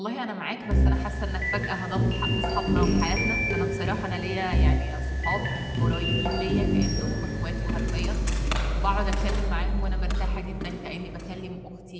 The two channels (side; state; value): both; identical; correlation 1.00